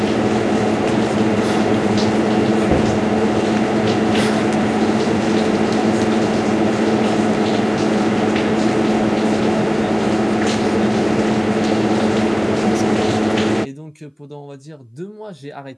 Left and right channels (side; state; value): both; identical; correlation 1.00